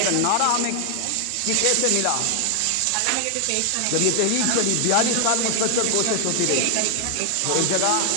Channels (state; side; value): different; both; correlation 0.00